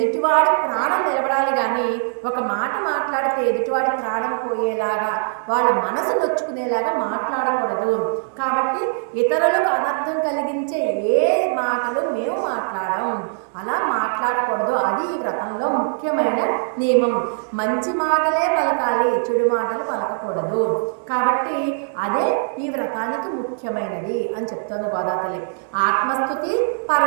ప్రాణం నిలబడాలి, కానీ ఒక మాట మాట్లాడితే ఎదుటివాడి ప్రాణం పోయేలాగా, వాళ్ళ మనసు నొచ్చుకునేలాగా మాట్లాడకూడదు. కాబట్టి ఇతరులకు అనర్థం కలిగించే ఏ మాటలు మేము మాట్లాడం, అలా మాట్లాడకూడదు. అది ఈ వ్రతంలో ముఖ్యమైన నియమం. మంచి మాటలే పలకాలి, చెడు మాటలు పలకకూడదు. కాబట్టి అదే ఈ వ్రతానికి ముఖ్యమైనది అని చెప్తోంది గోదాతల్లి. ఆత్మస్తుతి,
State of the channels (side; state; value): left; silent; 65 dB below the other